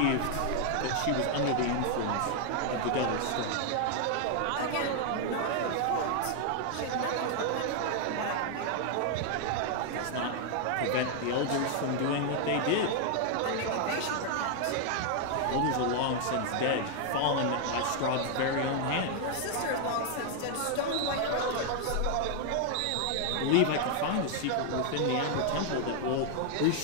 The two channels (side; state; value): both; different; correlation 0.00